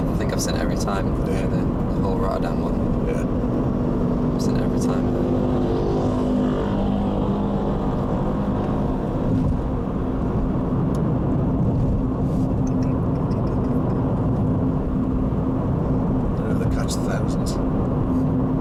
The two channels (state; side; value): identical; both; correlation 1.00